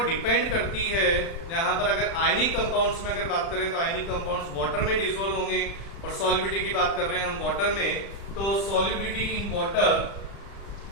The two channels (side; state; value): right; late; 36 ms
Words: डिपेंड करती है, यहाँ पर अगर आयनिक कंपाउंड्स में अगर बात करें तो आयनिक कंपाउंड्स वाटर में डिसॉल्व होंगे, और सॉलिबिलिटी की बात कर रहे हैं हम वाटर में, तो solubility in water,